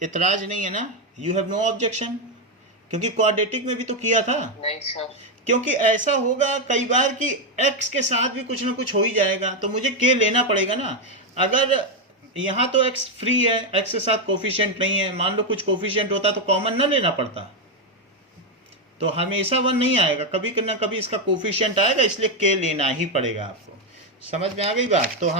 इतराज नहीं है ना? You have no objection? क्योंकि क्वाड्रेटिक में भी तो किया था। नहीं सर। क्योंकि ऐसा होगा कई बार कि x के साथ भी कुछ ना कुछ हो ही जाएगा, तो मुझे k लेना पड़ेगा ना। अगर यहाँ तो x फ्री है, x के साथ कोफिशिएंट नहीं है, मान लो कुछ कोफिशिएंट होता तो कॉमन ना लेना पड़ता, तो हमेशा 1 नहीं आएगा, कभी ना कभी इसका कोफिशिएंट आएगा, इसलिए k लेना ही पड़ेगा आपको। समझ में आ गई बात? तो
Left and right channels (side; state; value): both; normal; correlation 0.05